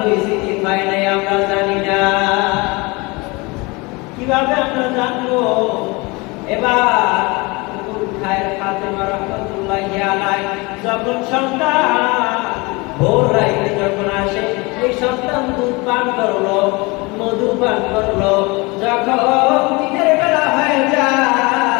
কি হয় নাই আমরা জানি না, কিভাবে আমরা জানবো? এবার ফাতেমা রাহমাতুল্লাহি আলাইহা যখন সন্তান ভোর রাইতে যখন আসে, এই সন্তান দুধ পান করলো, মধু পান করলো, যখন দিনের বেলা হয়ে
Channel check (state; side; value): quieter; right; 25.8 dB